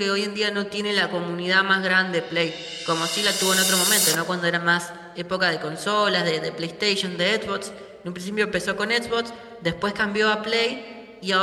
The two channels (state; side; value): identical; both; correlation 1.00